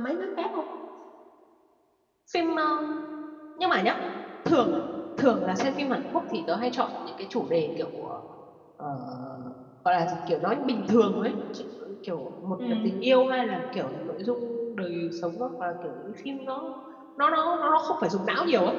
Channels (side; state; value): both; identical; correlation 1.00